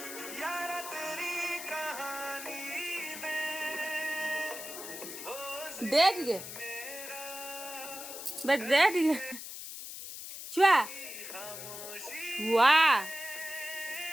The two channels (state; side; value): noise; left; hiss, 9 dB below the sound